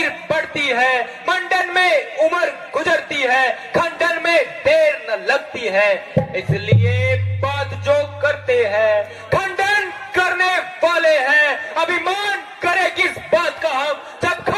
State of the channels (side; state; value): both; identical; correlation 1.00